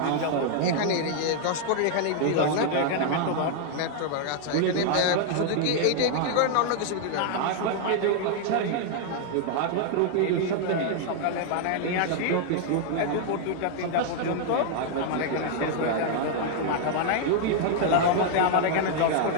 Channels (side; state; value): both; different; correlation 0.00